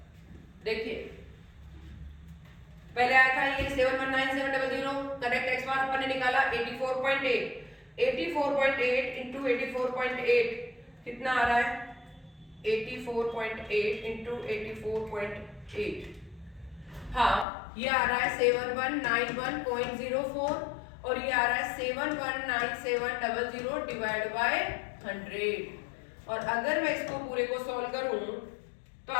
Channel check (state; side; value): drops out; right; at 17.4 s